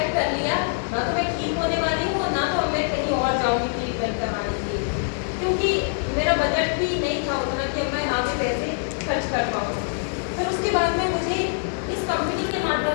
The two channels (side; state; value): right; silent; digital silence